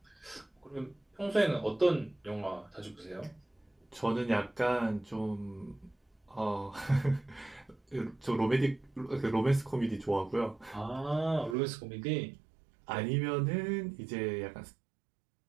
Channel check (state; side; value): drops out; left; at 11.6 s